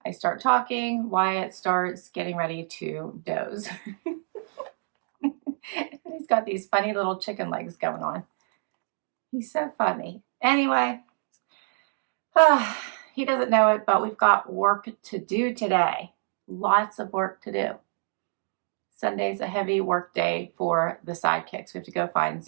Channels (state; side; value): silent; left; digital silence